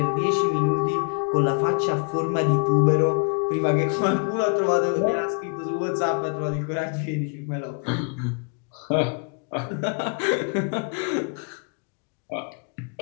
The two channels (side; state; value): right; quieter; 37.0 dB